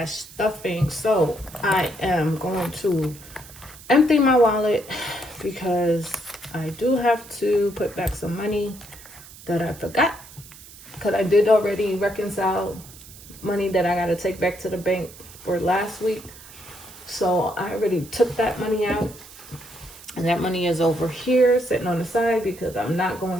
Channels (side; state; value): right; noise; hiss, 19 dB below the sound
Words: stuffing. So I am going to empty my wallet because I do have to put back some money that I forgot. Because I did already reconcile money that I got to take back to the bank for last week. So I already took that money out. And that money is over here sitting on the side because I'm not